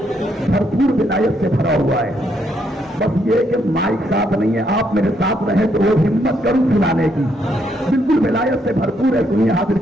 भरपूर विलायत से भरा हुआ है। बस ये कि माइक साथ नहीं है, आप मेरे साथ रहे तो वो हिम्मत करूं सुनाने की। बिल्कुल विलायत से भरपूर है। सुनिए, हाजिर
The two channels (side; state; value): both; normal; correlation 0.74